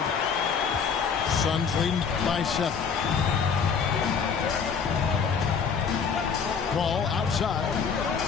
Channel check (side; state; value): right; quieter; 6.2 dB